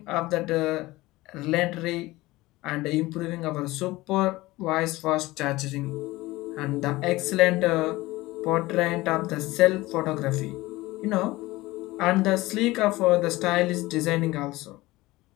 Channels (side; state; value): right; quieter; 19.4 dB